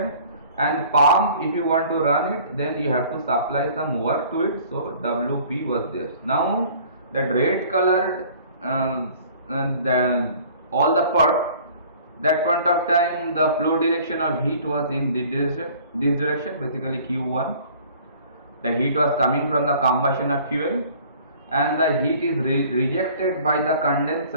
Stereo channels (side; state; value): both; inverted; correlation -0.51